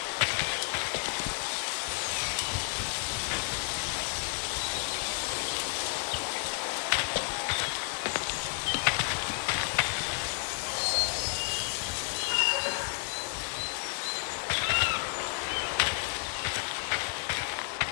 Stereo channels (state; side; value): silent; right; 57 dB below the other